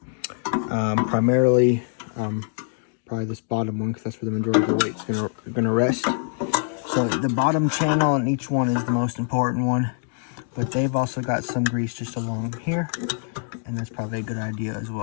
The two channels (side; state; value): right; silent; 57 dB below the other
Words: primarily probably this bottom one, because that's where the majority of the weight's going to rest. So the bottom channel on each one is the most important one, but they've also got some grease just along here, and that's probably a good idea as